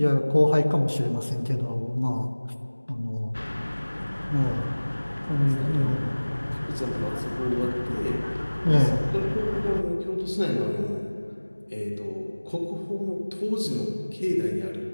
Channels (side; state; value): both; inverted; correlation -1.00